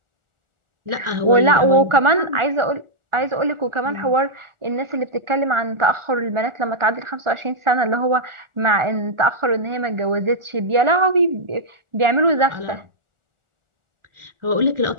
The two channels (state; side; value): late; left; 1.4 ms